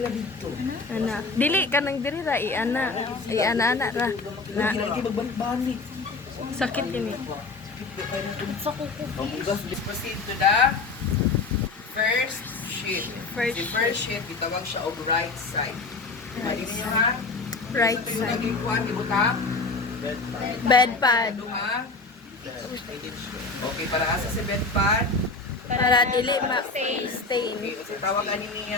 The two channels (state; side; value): quieter; right; 3.8 dB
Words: dito. Anak. Dili ka nang diri ra i-ana. I-ana ra. Na. Lagi magbalik-balik. Sakit yun eh. Sa kuko. Let's proceed to the first sheet. Si first sheet, itawag siya og right side. Mali niyo ha? Right Ito yung side. naging kuhan, ibutang. Bed pad. Ha? Okay, para asa si bed pad. Para dili ma-stain. Okay, kasi tawag ani